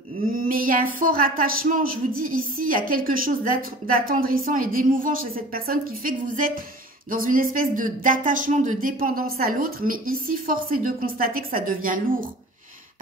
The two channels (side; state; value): both; normal; correlation 0.43